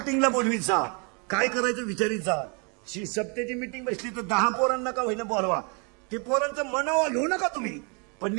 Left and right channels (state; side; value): quieter; left; 35.0 dB